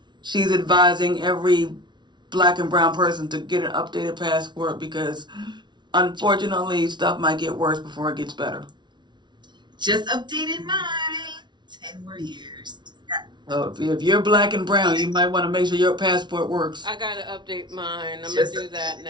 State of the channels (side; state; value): left; late; 0.21 ms